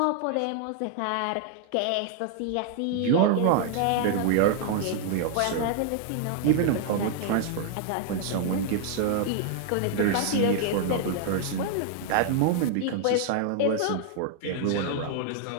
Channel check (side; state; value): both; different; correlation 0.00